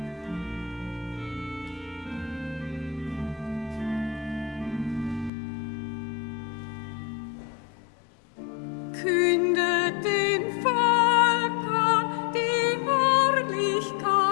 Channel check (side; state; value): right; drops out; at 5.3 s